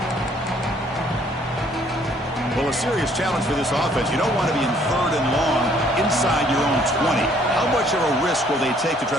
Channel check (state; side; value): normal; both; correlation 0.62